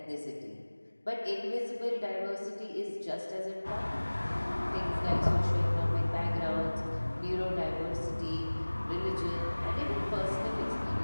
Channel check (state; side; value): inverted; both; correlation -1.00